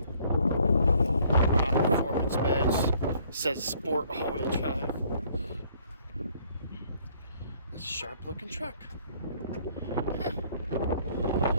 Performance badge says Sport all-wheel drive. It's a sharp-looking truck. Huh.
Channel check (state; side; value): inverted; both; correlation -0.61